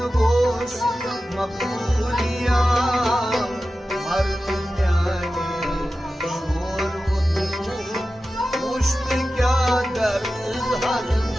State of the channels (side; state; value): both; normal; correlation 0.94